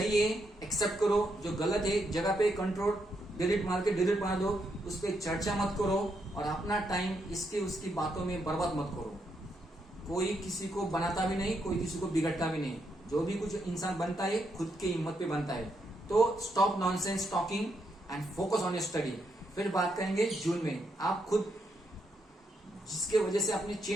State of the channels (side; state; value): both; normal; correlation 0.79